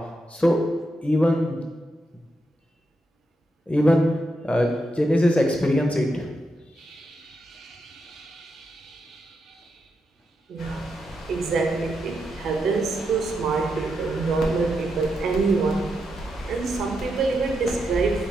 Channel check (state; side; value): normal; both; correlation 0.84